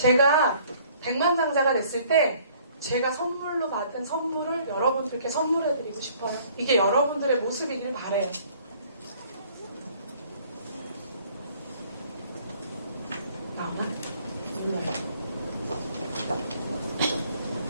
백만장자가 됐을 때 제가 선물로 받은 선물을 여러분들께 선물해드리고 싶어요. 이게 여러분들의 모습이길 바래요. 나오나?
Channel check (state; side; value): inverted; both; correlation -0.57